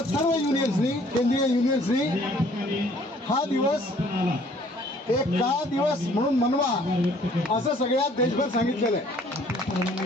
सर्व युनियन्सनी, केंद्रीय युनियन्सनी हा दिवस एक का दिवस म्हणून मनवा असं सगळ्या देशभर सांगितलेलं आहे.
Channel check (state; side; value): normal; both; correlation 0.58